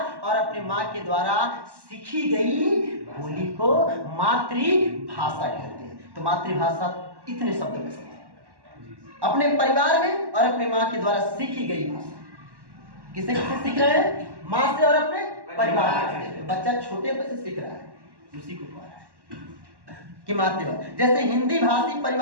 और अपने माँ के द्वारा सीखी गई बोली को मातृभाषा कहते हैं। तो मातृभाषा इतने शब्दों में समझ, अपने परिवार में और अपने माँ के द्वारा सीखी गई भाषा। किसे किसे सीख रहे हैं? माँ से और अपने परिवार से। बच्चा छोटे पर से सीख रहा है, उसी को कह रहा है कि मातृभाषा। जैसे हिंदी भाषी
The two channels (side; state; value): left; late; 1.1 ms